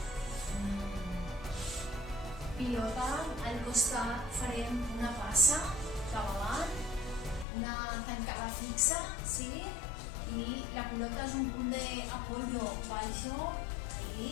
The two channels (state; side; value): drops out; right; at 7.5 s